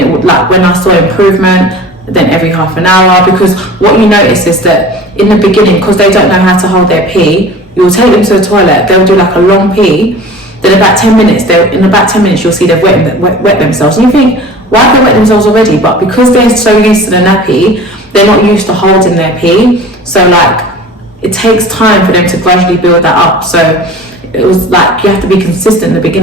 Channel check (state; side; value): normal; both; correlation 0.41